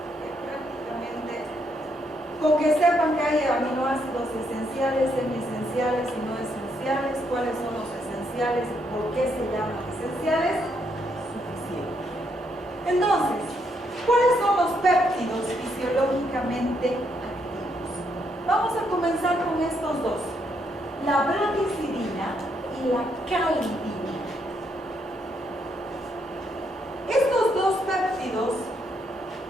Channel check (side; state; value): both; normal; correlation 0.75